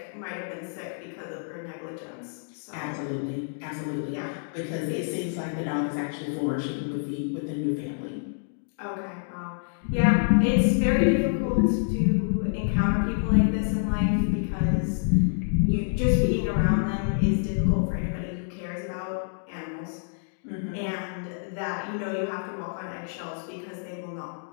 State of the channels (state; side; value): silent; right; digital silence